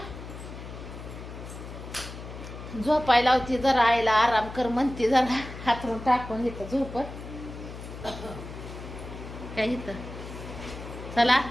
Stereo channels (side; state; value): left; noise; hum, 11 dB below the sound